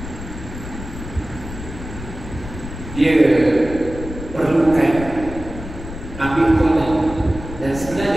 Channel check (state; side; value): noise; left; rumble, 11 dB below the sound